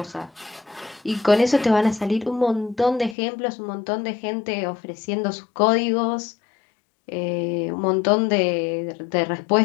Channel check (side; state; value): right; drops out; at 3.2 s